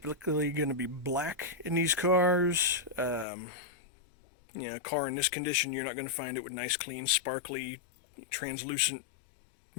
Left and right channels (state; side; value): drops out; right; at 3.2 s